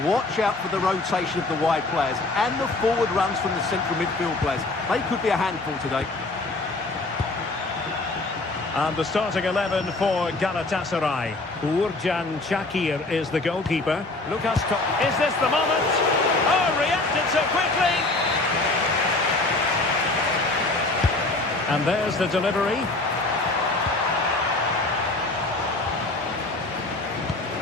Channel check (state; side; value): quieter; right; 3.1 dB